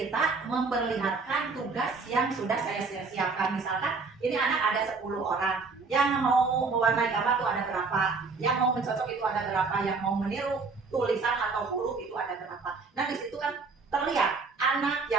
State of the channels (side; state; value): left; quieter; 4.4 dB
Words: memperlihatkan tugas yang sudah saya siapkan. Misalkan ini anak ada 10 orang, yang mau mewarnai gambar itu ada berapa, yang mau mencocok itu ada berapa, yang mau meniru tulisan atau huruf itu ada berapa. Nah di situ kan terlihat anak